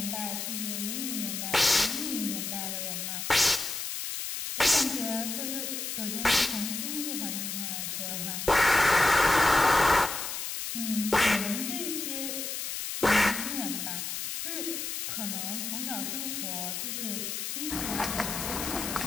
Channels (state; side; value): noise; left; hiss, 4 dB below the sound